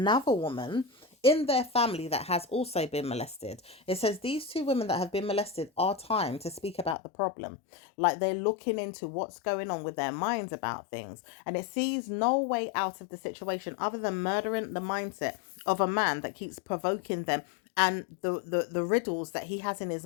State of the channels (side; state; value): right; drops out; at 7.0 s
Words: woman in their family that has also been molested. It says these two women that have been molested are time to speak about the problem. Like, they're looking into what's going on with their minds about things. And it sees no way out of the situation other than murdering the mindset of a man that keeps provoking them and the riddles that he has in his